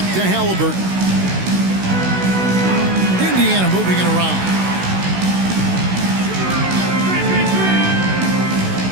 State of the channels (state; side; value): late; left; 16 ms